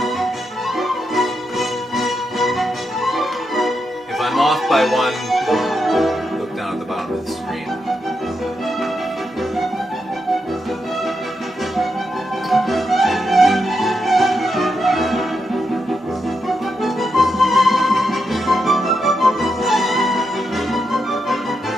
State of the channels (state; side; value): normal; both; correlation 0.84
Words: If I'm off by one, look down at the bottom of the screen.